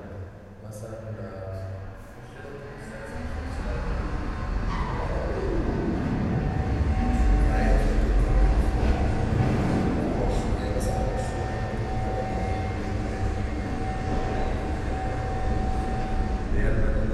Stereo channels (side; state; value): both; identical; correlation 1.00